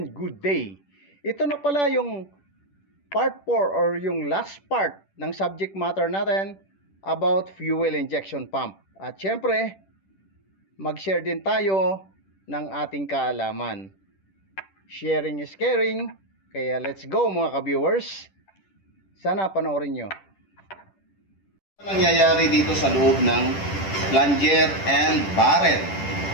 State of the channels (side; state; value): right; late; 10 ms